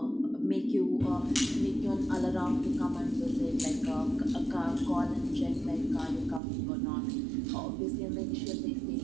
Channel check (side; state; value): left; drops out; at 6.4 s